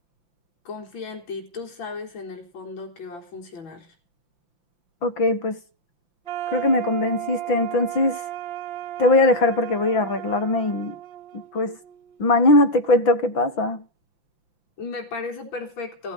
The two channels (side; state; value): right; late; 6.1 ms